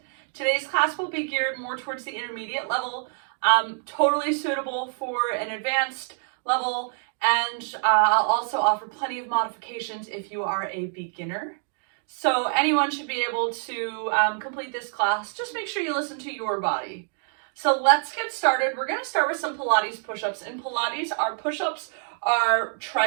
Today's class will be geared more towards the intermediate level, totally suitable for an advanced level, and I'll also offer plenty of modifications if you are a beginner. So anyone should be able to complete this class. Just make sure you listen to your body. So let's get started. We're going to start with some Pilates push-ups. In Pilates, our push-ups are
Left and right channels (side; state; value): left; silent; 61 dB below the other